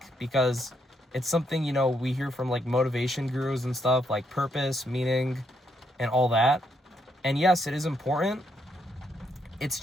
because it's something, we hear from like motivation gurus and stuff, like purpose, meaning, and all that. And yes, it is important. It's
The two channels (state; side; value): normal; both; correlation 0.76